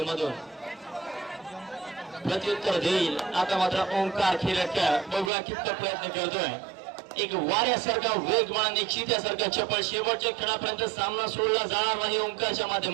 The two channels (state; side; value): drops out; left; at 5.3 s